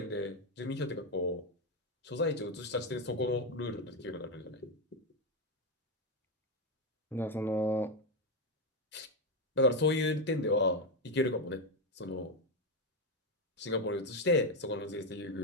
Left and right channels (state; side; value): normal; both; correlation 0.07